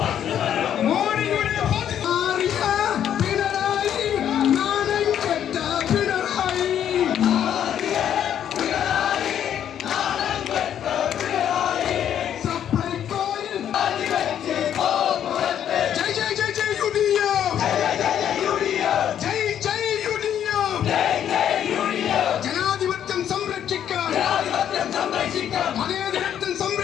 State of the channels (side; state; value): right; quieter; 9.8 dB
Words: മോദിയുടെ ജനാധിപത്യം സംരക്ഷിക്കാൻ മതേതരത്വം